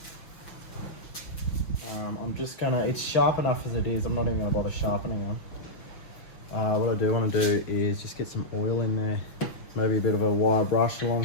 I'm just gonna, it's sharp enough as it is. I'm not even gonna bother sharpening them. What I do want to do is just get some oil in there. Maybe a bit of a wire brush along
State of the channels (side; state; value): right; late; 6.0 ms